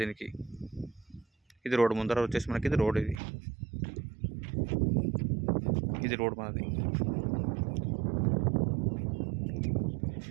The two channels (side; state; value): left; drops out; at 3.2 s